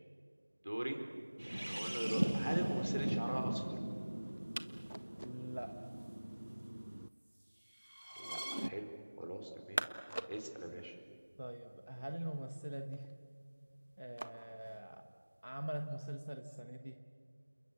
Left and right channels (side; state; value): both; inverted; correlation -1.00